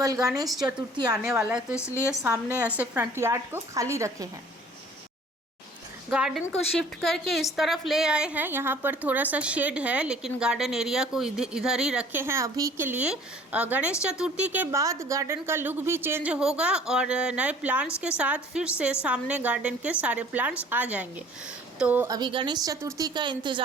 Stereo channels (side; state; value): both; normal; correlation 0.52